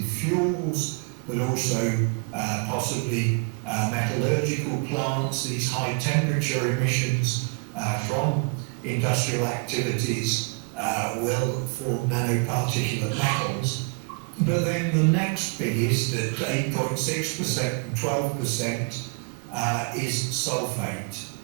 fuels, but also possibly metallurgical plants. These high temperature emissions from industrial activities will form nanoparticulate metals. But then the next biggest at 8.6% and 12% is sulfate.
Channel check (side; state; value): left; quieter; 34.5 dB